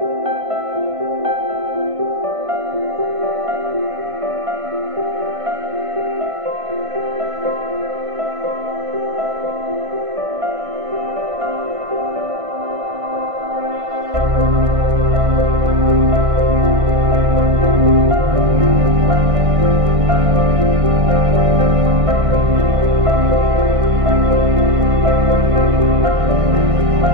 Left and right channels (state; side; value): late; left; 1.5 ms